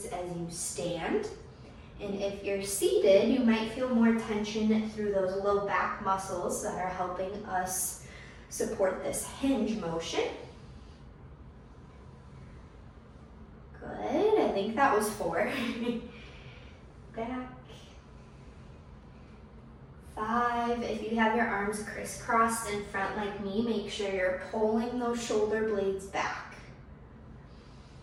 as you stand. And if you're seated, you might feel more tension through those low back muscles that are helping us support this hinge motion. Good, I think that was 4. Back. 5, if you have your arms crisscrossed in front like me, make sure you're pulling those shoulder blades back.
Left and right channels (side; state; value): both; identical; correlation 1.00